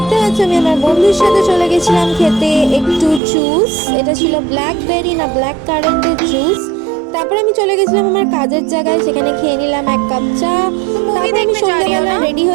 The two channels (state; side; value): drops out; left; at 3.2 s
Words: পাচ্ছ আমি আমার বন্ধুর সাথে চলে গেছিলাম খেতে একটু জুস। এটা ছিল ব্ল্যাকবেরি না ব্ল্যাক কারেন্টের জুস। তারপর আমি চলে গেছিলাম আমার কাজের জায়গায়, সেখানে খেয়ে নিলাম এক কাপ চা। তারপর আমি সন্ধ্যাবেলা রেডি